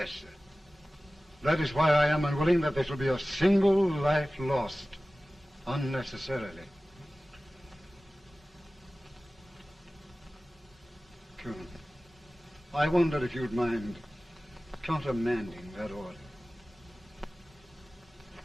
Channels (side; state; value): both; normal; correlation 0.97